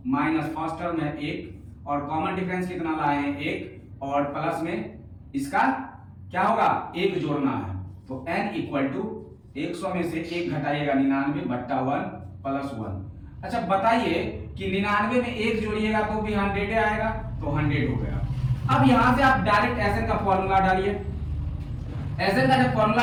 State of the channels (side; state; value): both; identical; correlation 1.00